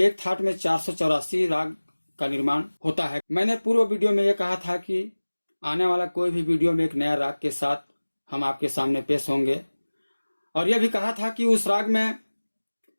एक थाट में 484 राग का निर्माण होता है। मैंने पूर्व वीडियो में यह कहा था कि आने वाला कोई भी वीडियो में एक नया राग के साथ हम आपके सामने पेश होंगे, और यह भी कहा था कि उस राग में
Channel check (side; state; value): both; inverted; correlation -1.00